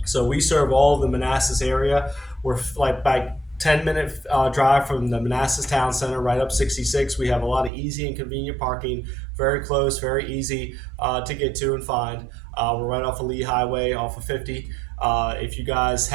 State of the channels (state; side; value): drops out; left; at 7.7 s